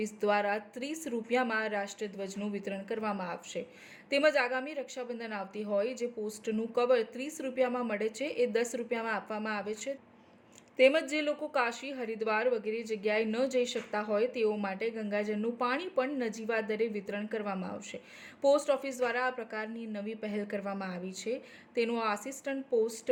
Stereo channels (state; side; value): identical; both; correlation 1.00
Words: દ્વારા 30 રૂપિયામાં રાષ્ટ્રધ્વજનું વિતરણ કરવામાં આવશે। તેમજ આગામી રક્ષાબંધન આવતી હોય, જે પોસ્ટનું કવર 30 રૂપિયામાં મળે છે એ 10 રૂપિયામાં આપવામાં આવે છે। તેમજ જે લોકો કાશી, હરિદ્વાર વગેરે જગ્યાએ ન જઈ શકતા હોય તેઓ માટે ગંગાજળનું પાણી પણ નજીવા દરે વિતરણ કરવામાં આવશે। પોસ્ટ ઓફિસ દ્વારા આ પ્રકારની નવી પહેલ કરવામાં આવી છે, તેનું આસિસ્ટન્ટ